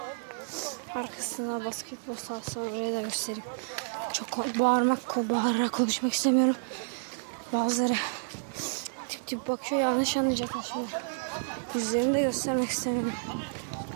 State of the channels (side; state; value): left; silent; digital silence